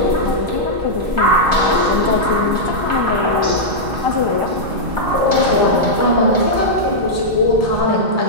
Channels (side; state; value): left; late; 2.3 ms